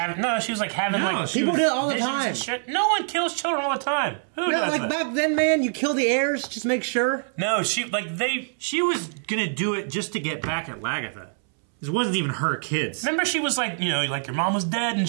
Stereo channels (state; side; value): silent; left; 62 dB below the other